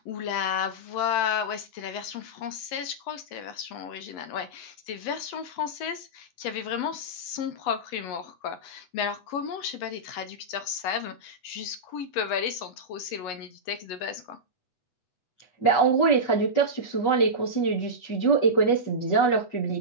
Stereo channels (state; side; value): late; right; 8.1 ms